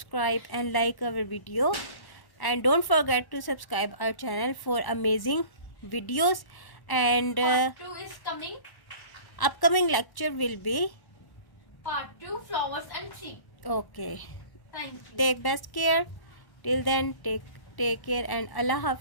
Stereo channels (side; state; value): right; late; 1.1 ms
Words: and like our video, and don't forget to subscribe our channel for amazing videos, and part 2 is coming. upcoming lecture will be Part 2, flowers and seeds. okay. Thank you. Take best care. Till then, take care and Allah